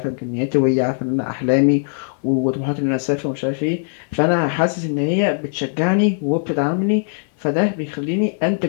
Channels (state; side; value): silent; right; 66 dB below the other